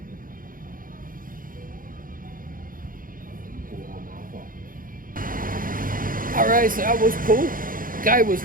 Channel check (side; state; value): left; late; 0.40 ms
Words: Alright, so that was cool. Guy was